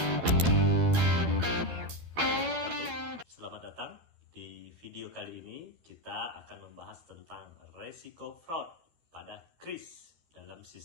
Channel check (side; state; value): left; late; 12 ms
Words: Selamat datang. Di video kali ini kita akan membahas tentang resiko fraud pada kris dalam